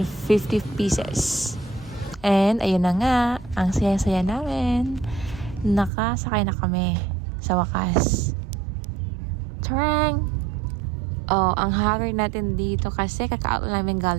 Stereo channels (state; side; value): drops out; left; at 5.9 s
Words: pieces. And ayun na nga, ang saya-saya namin. Nakasakay na kami sa wakas. Tarang! Oh, ang haggard natin dito kasi kaka-out namin